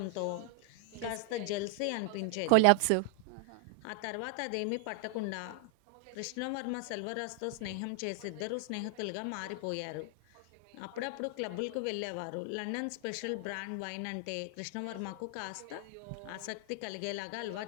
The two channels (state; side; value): different; both; correlation 0.00